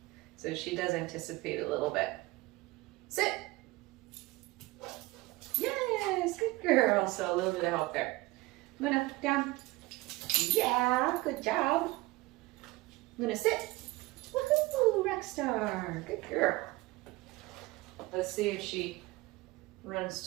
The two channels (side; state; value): left; quieter; 21.1 dB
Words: So she does anticipate a little bit. Sit. Yes, good girl. So a little bit of help there. Luna, down. Yeah, good job. Luna, sit. Woohoo, rock star. Good girl. Let's see if she